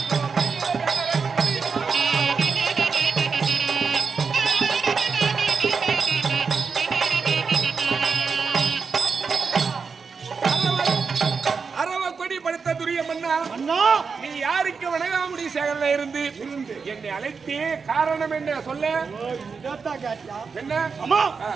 நீ யாருக்கு வணங்காமுடி சேகரில் இருந்து என்னை அழைத்தே காரணம் என்ன சொல்ல? என்ன அம்மா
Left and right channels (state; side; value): quieter; left; 5.3 dB